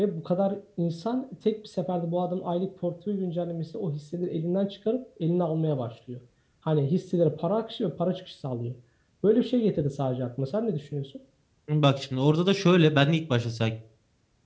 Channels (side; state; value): both; identical; correlation 1.00